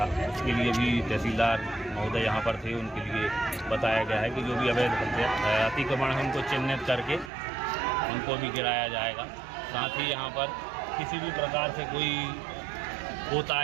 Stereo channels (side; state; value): left; drops out; at 7.3 s